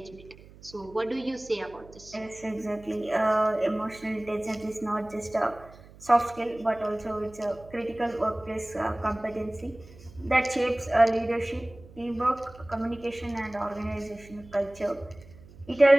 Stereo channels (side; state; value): right; noise; hum, 21 dB below the sound